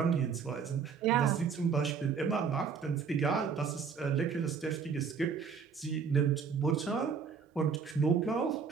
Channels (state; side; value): quieter; left; 6.1 dB